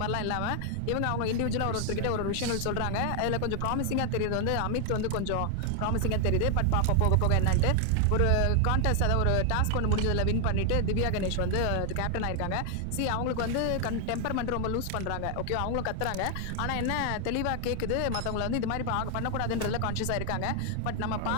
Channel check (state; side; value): different; both; correlation 0.00